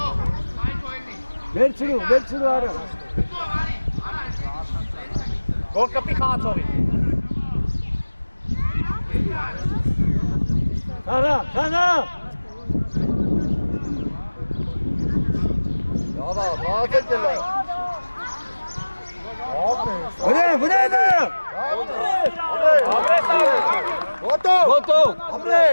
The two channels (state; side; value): inverted; both; correlation -1.00